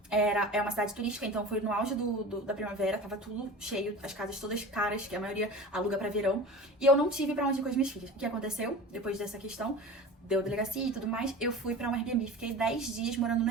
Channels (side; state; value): both; normal; correlation 0.35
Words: é uma cidade turística, então foi no auge da primavera, tava tudo cheio, as casas todas caras, que a maioria aluga pra verão. E eu não tive pra onde ir com as minhas filhas. O que aconteceu depois dessa questão? Deu delegacia e tudo mais, eu fui pra um Airbnb, fiquei 10 dias morando no